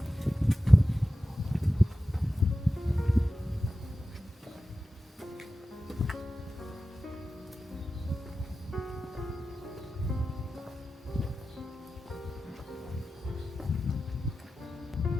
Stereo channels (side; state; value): both; normal; correlation 0.93